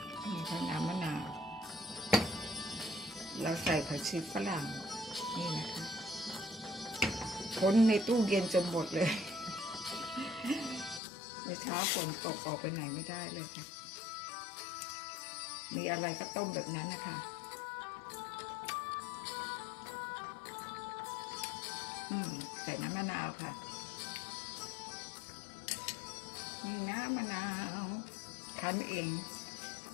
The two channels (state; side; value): drops out; right; at 11.0 s